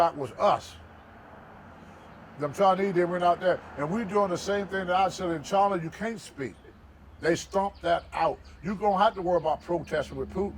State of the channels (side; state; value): both; identical; correlation 1.00